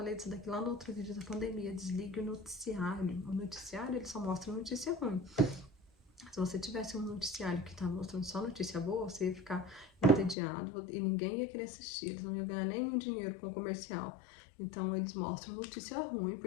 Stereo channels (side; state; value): right; drops out; at 10.4 s